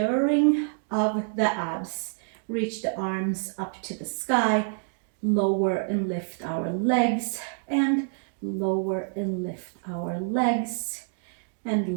of the abs. Reach the arms up to the sky. Lower and lift our legs. And lower and lift our legs.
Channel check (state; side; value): silent; left; digital silence